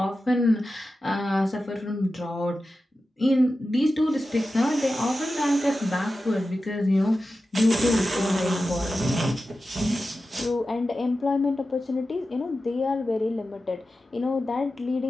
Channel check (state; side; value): normal; both; correlation 0.93